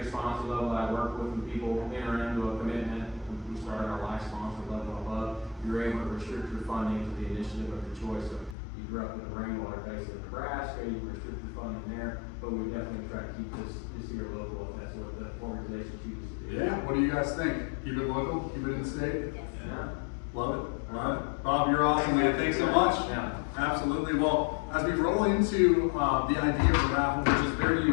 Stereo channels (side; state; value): right; drops out; at 8.6 s